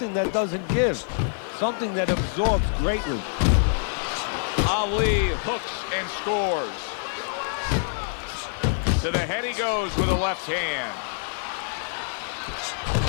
that doesn't give, something that absorbs greatly. Ali hooks and scores. To the head he goes with a left hand.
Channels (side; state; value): right; silent; 61 dB below the other